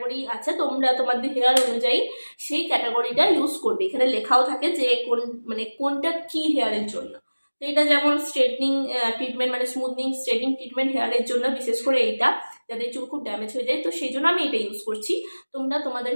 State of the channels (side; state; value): both; inverted; correlation -1.00